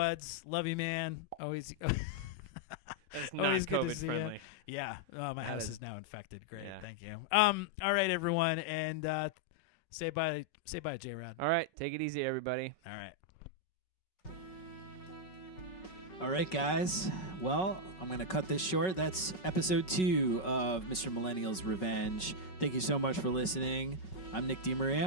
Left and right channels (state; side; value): late; right; 5.4 ms